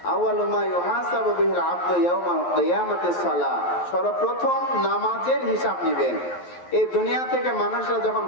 আউয়ালু মা ইউহাসাবু বিহিল আবদু ইয়াউমাল কিয়ামাতিস সালাহ, সর্বপ্রথম নামাজের হিসাব নেবেন। এই দুনিয়া থেকে মানুষরা যখন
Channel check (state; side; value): late; right; 11 ms